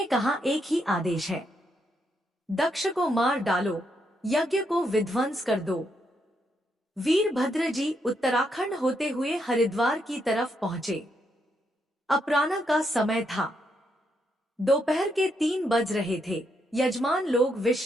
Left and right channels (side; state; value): both; normal; correlation 0.78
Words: कहा, एक ही आदेश है, दक्ष को मार डालो, यज्ञ को विध्वंस कर दो। वीरभद्र जी उत्तराखंड होते हुए हरिद्वार की तरफ पहुंचे। अपराह्न का समय था, दोपहर के 3 बज रहे थे। यजमान लोग